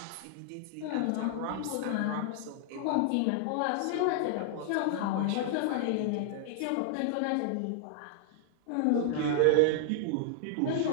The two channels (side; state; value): both; different; correlation -0.01